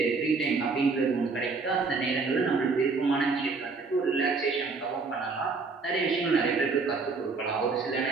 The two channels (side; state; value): left; quieter; 4.3 dB